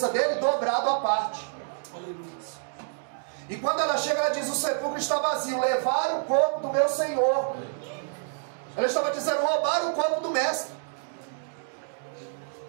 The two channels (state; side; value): silent; left; digital silence